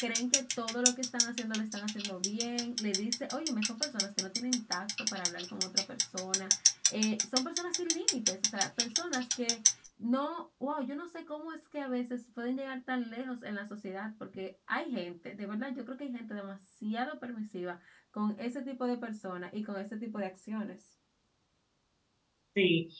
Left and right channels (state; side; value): identical; both; correlation 1.00